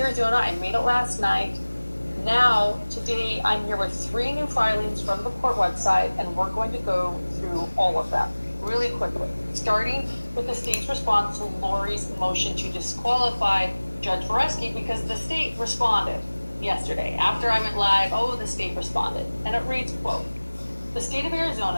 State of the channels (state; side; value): inverted; both; correlation -1.00